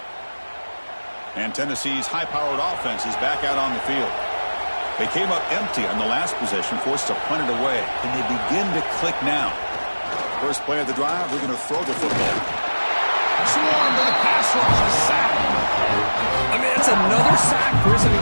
And Tennessee's high-powered offense is back out on the field. They came up empty on the last possession, forced to punt it away. Can they begin to click now? First play of the drive, we're going to throw the football. Swarm to the pass rush, a sack. I mean, that's another sack, Chris. I mean,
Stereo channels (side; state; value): both; inverted; correlation -1.00